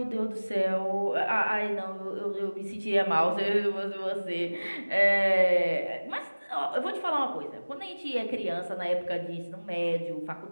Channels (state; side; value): inverted; both; correlation -1.00